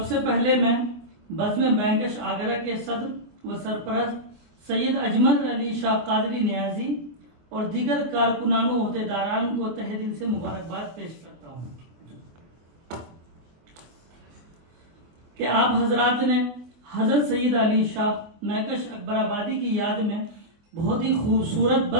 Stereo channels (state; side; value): late; left; 25 ms